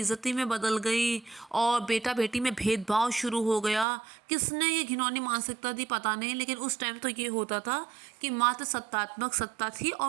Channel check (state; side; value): drops out; left; at 3.9 s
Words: में बदल गई और बेटा बेटी में भेदभाव शुरू हो गया। किसने ये घिनौनी मानसिकता दी पता नहीं, लेकिन उस टाइम तो ये होता था कि मात्र सत्तात्मक सत्ता थी